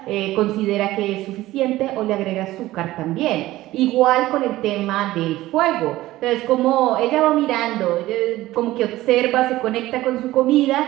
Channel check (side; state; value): left; quieter; 16.5 dB